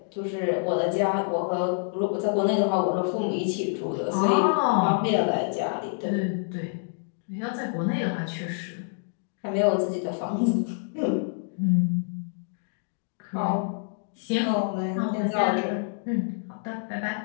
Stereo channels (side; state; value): right; silent; digital silence